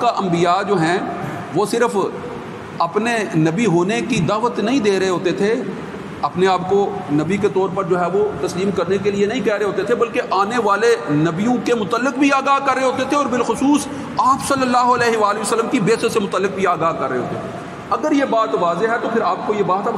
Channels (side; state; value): both; identical; correlation 1.00